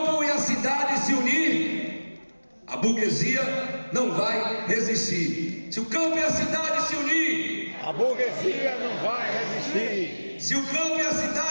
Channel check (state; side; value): inverted; both; correlation -1.00